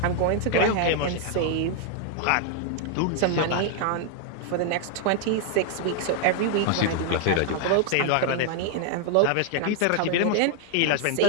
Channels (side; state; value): both; different; correlation 0.00